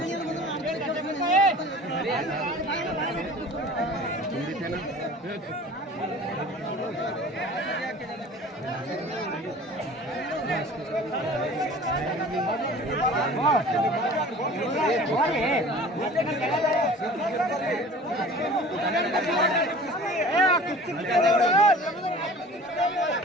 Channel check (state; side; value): normal; both; correlation 0.43